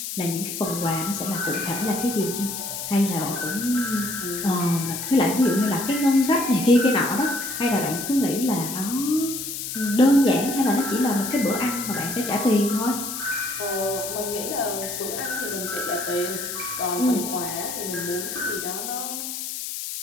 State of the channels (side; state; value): left; noise; hiss, 6 dB below the sound